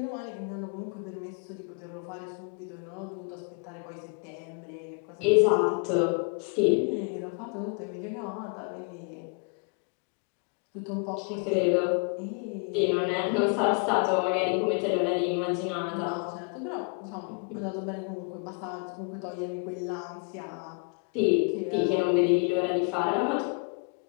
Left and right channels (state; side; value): quieter; right; 38.1 dB